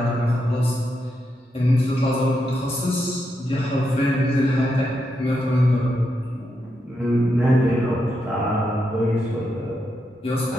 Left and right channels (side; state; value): both; normal; correlation 0.83